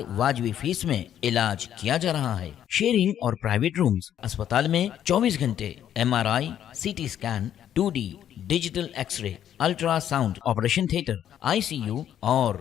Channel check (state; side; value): quieter; right; 10.3 dB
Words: वाजबी फीस में इलाज किया जा रहा है। शेयरिंग और प्राइवेट रूम्स, अस्पताल में 24 घंटे MRI, CT scan, 2D digital x-ray, ultrasound, operation theatre, ICU